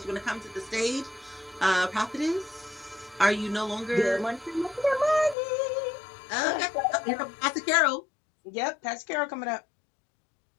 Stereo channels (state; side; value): drops out; right; at 5.4 s